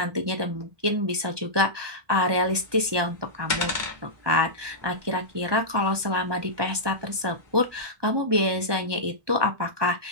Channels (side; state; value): left; late; 1.2 ms